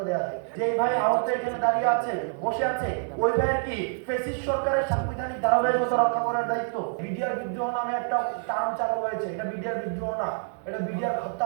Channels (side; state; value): left; silent; 57 dB below the other